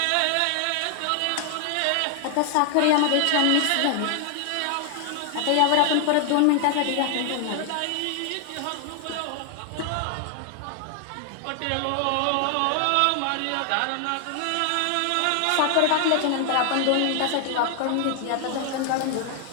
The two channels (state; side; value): different; both; correlation 0.00